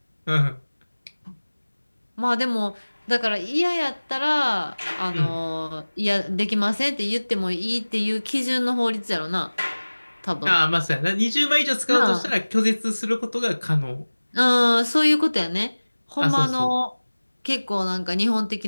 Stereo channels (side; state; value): both; inverted; correlation -1.00